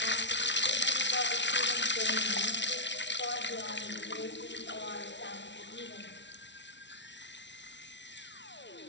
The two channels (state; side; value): late; right; 0.52 ms